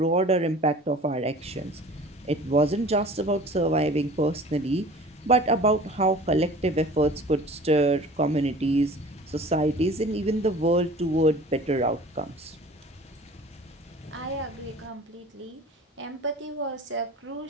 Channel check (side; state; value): both; normal; correlation 0.44